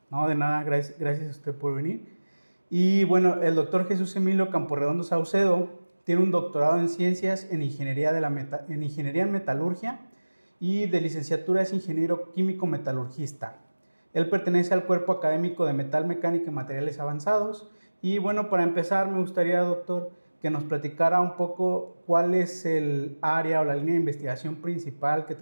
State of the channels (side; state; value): both; inverted; correlation -1.00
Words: No, de nada, gracias a usted por venir. Y bueno, el doctor Jesús Emilio Camporredondo Saucedo tiene un doctorado en ciencias en ingeniería, en ingeniería en metalurgia y de licenciatura es ingeniero químico metalurgista. Él pertenece al cuerpo académico de metal mecánica y materiales avanzados. Y bueno, para empezar me gustaría, doctor, que nos platicara un poco cuál es el área o la línea de investigación principal que